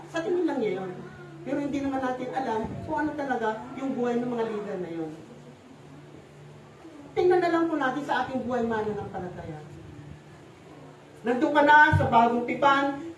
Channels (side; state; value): both; identical; correlation 1.00